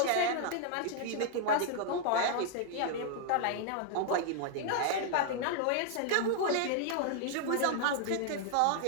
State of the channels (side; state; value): both; different; correlation 0.00